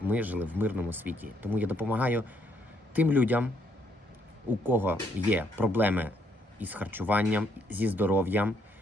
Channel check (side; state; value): both; normal; correlation 0.70